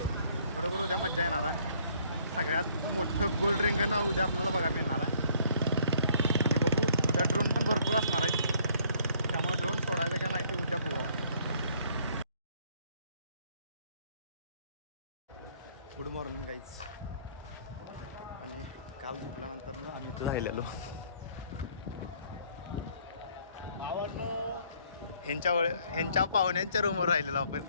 बरोबर उद्या मजा येणार आहे. सगळ्यात मोठं गोल्ड रिंगण उद्या आपल्याला बघायला मिळणार आहे. आणि बघू, उद्या ड्रोन पण भरपूर असणार आहेत, त्यामुळे ड्रोन सोडायचं का नाही ते उद्या बघू. Good morning guys. आणि काल झोपल्यानंतर ना आम्ही इथं राहिलेलो. ह्यांच्या पाहुण्यांच्या रूमवर राहिलेलो आपण.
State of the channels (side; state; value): both; inverted; correlation -0.61